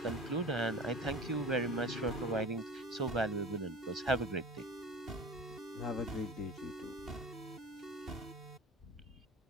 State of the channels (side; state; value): both; normal; correlation 0.35